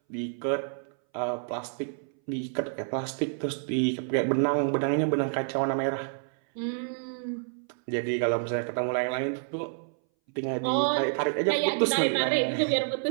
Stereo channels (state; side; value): silent; left; 59 dB below the other